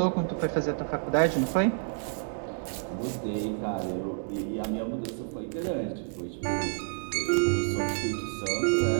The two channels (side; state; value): left; silent; digital silence